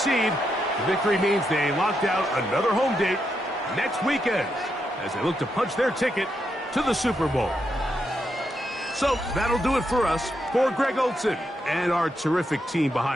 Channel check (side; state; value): both; normal; correlation 0.82